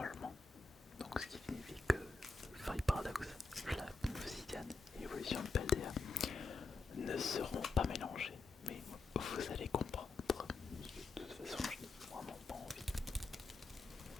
Donc ce qui signifie que Fire Paradox, Flamme Obsidian et Évolution de Paldea ne seront pas mélangés. Mais vous allez comprendre. De toute façon, je n'ai vraiment pas envie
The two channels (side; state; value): right; quieter; 3.6 dB